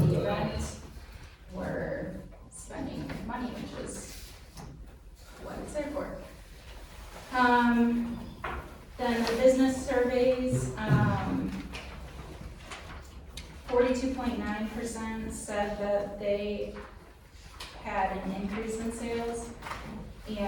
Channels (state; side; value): identical; both; correlation 1.00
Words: event were spending money, which is what it's there for. Then the business surveys, 42.9% said that they had an increase in sales,